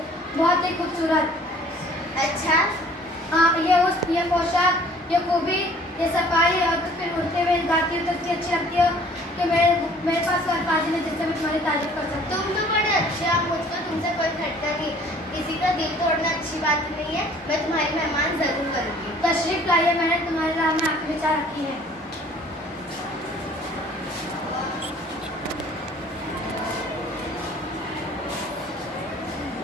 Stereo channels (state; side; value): normal; both; correlation 0.53